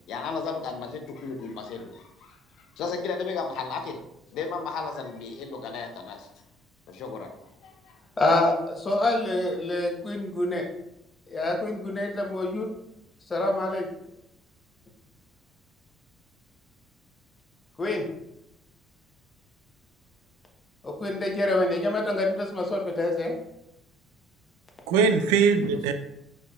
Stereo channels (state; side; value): normal; both; correlation 0.59